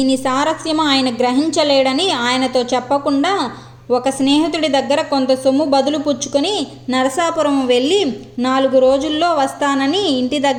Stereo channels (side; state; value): both; identical; correlation 1.00